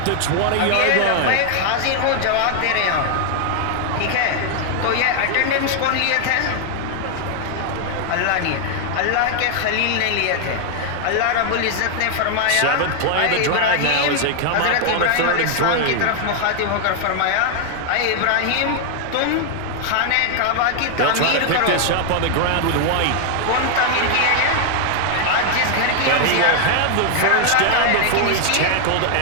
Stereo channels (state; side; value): different; both; correlation 0.00